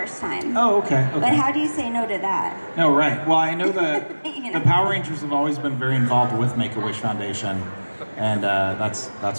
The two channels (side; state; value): both; inverted; correlation -1.00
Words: time. Oh, okay. But how do you say no to that? No, right. Well, I know that You know. the Power Rangers have always been very involved with Make-A-Wish Foundation, and